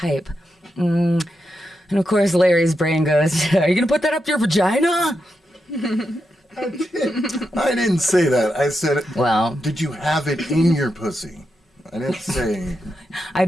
And of course, Larry's brain goes, "Are you gonna put that up your vagina?" I didn't say that. I said, Well, did you have it in your pussy? I didn't say. I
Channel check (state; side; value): normal; both; correlation 0.86